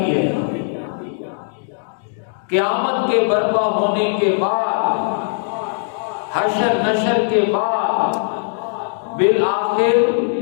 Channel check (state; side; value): silent; right; digital silence